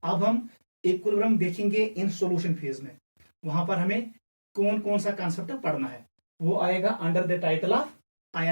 अब हम इक्विलिब्रियम देखेंगे इन सॉल्यूशन फेज में। वहां पर हमें कौन कौन सा कॉन्सेप्ट पढ़ना है वो आएगा under the title of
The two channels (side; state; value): both; inverted; correlation -1.00